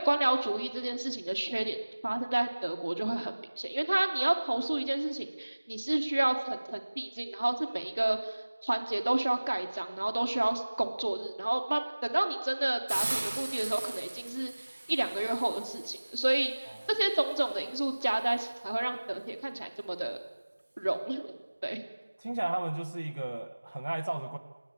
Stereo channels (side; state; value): both; inverted; correlation -1.00